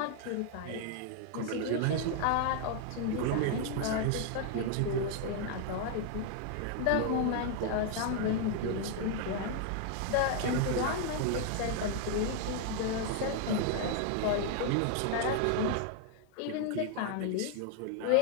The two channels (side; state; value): both; different; correlation 0.00